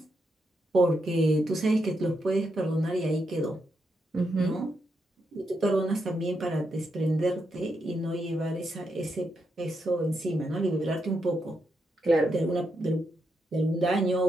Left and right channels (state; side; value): normal; both; correlation 0.82